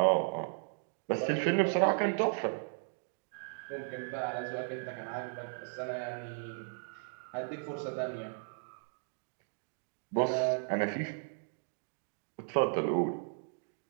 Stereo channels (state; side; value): silent; left; digital silence